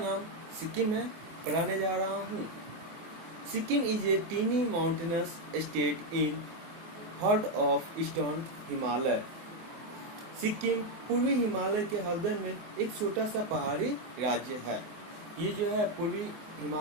सिक्किम है पढ़ाने जा रहा हूँ। Sikkim is a tiny mountainous state in heart of eastern Himalaya. Sikkim पूर्वी हिमालय के हृदय में एक छोटा सा पहाड़ी राज्य है। ये जो है पूर्वी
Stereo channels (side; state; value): left; late; 24 ms